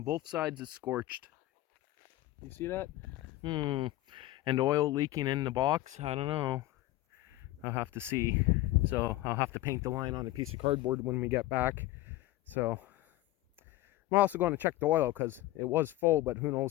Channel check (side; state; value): right; quieter; 16.5 dB